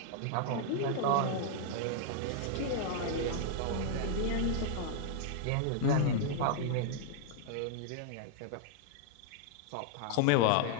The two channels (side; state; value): both; different; correlation -0.01